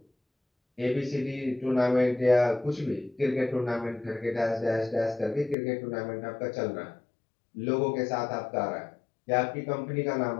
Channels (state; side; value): drops out; right; at 5.6 s